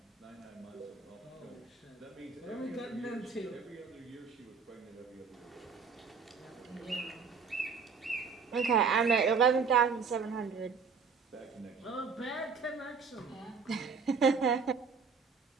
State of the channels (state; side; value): quieter; left; 5.5 dB